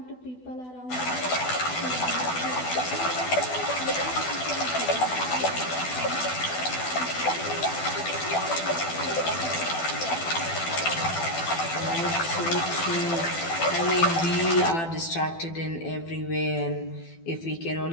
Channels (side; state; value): right; late; 12 ms